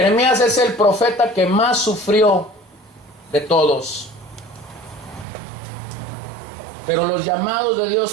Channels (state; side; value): drops out; left; at 5.2 s